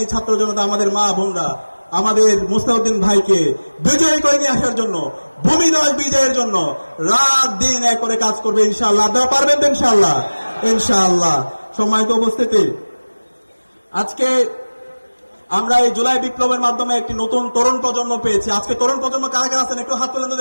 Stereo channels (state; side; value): inverted; both; correlation -1.00